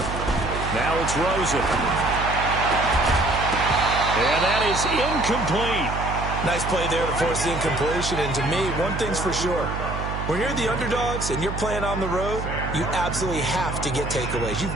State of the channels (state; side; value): noise; right; hum, 5 dB below the sound